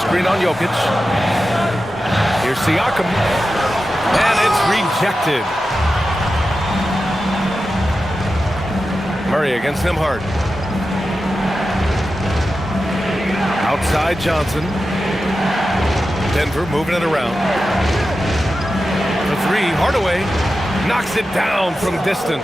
on Jokic. Here's Siakam. And it's rejected. Murray against Nembhard. Outside Johnson. Denver moving it around. The 3, Hardaway knocks it down from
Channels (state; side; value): normal; both; correlation 0.92